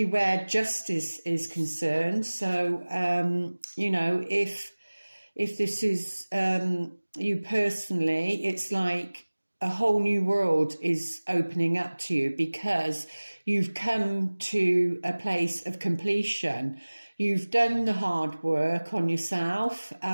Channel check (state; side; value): inverted; both; correlation -1.00